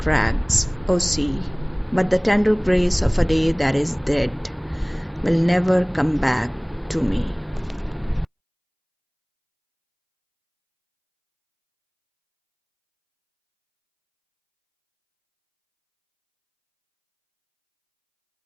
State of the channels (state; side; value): identical; both; correlation 1.00